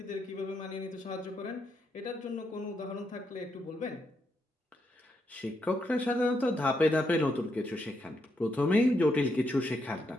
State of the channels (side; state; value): both; normal; correlation 0.79